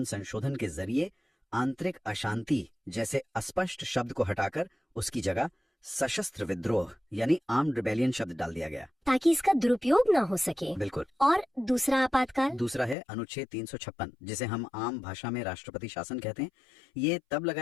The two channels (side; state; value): right; drops out; at 13.0 s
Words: संशोधन के जरिए आंतरिक अशांति जैसे अस्पष्ट शब्द को हटाकर उसकी जगह सशस्त्र विद्रोह यानी आर्म्ड रिबेलियन शब्द डाल दिया गया, ताकि इसका दुरुपयोग ना हो सके। बिल्कुल। और दूसरा आपातकाल? दूसरा है अनुच्छेद 356, जिसे हम आम भाषा में राष्ट्रपति शासन कहते हैं। ये तब